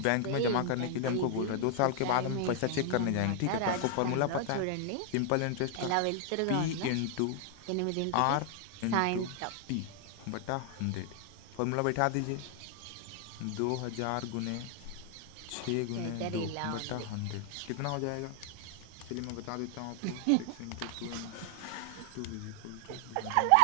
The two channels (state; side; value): different; both; correlation 0.00